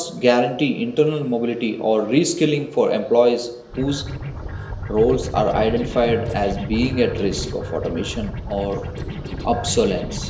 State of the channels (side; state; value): both; identical; correlation 1.00